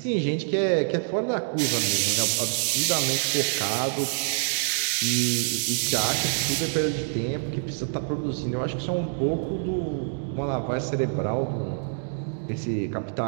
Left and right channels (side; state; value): left; silent; digital silence